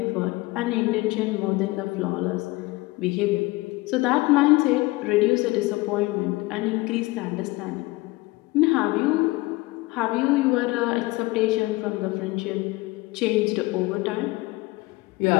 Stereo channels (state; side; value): quieter; right; 21.5 dB